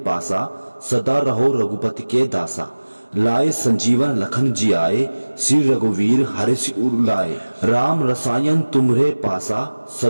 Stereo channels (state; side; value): inverted; both; correlation -1.00